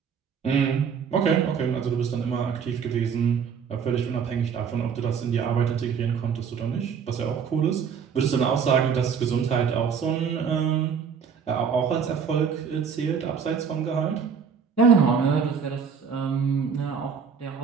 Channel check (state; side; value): quieter; left; 6.7 dB